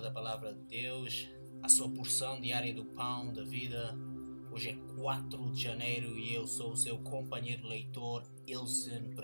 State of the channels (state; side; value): inverted; both; correlation -1.00